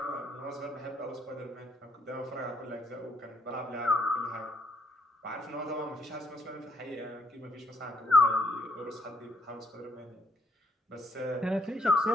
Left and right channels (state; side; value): normal; both; correlation 0.71